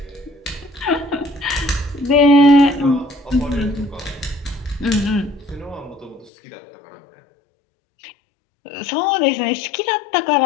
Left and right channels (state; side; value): drops out; right; at 6.3 s